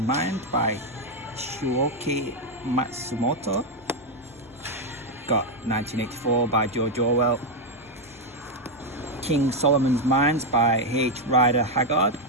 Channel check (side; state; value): both; normal; correlation 0.03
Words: Mind by Shuoki Matsumoto. Got 1984 by George Orwell. King Solomon's Mines by H. Rider Haggard.